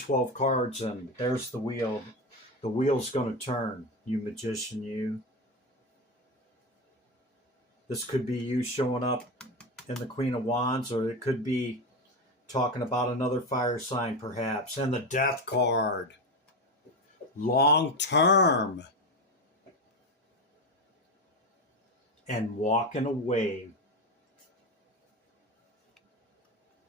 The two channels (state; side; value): normal; both; correlation 0.17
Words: cards, and there's the wheel. The wheel's going to turn, you magician, you. This could be you showing up in the Queen of Wands, or it could be talking about another fire sign, perhaps. And the Death card. Long term. And walking away.